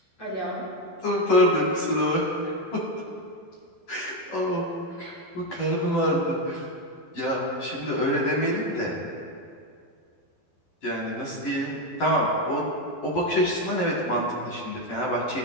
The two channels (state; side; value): late; right; 12 ms